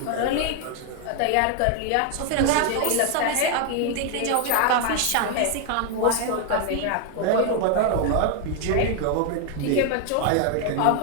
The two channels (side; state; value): both; different; correlation 0.01